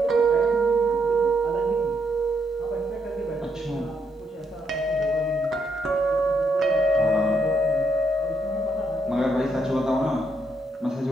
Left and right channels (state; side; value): normal; both; correlation 0.77